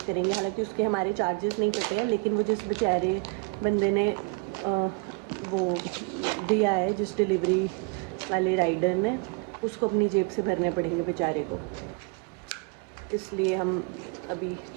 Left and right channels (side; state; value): left; quieter; 30.4 dB